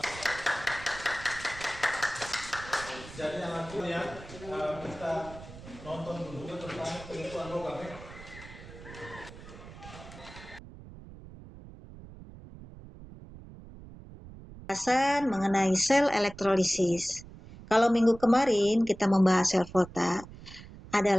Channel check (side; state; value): right; noise; rumble, 16 dB below the sound